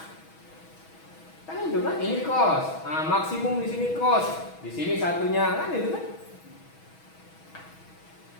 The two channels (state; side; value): late; right; 6.2 ms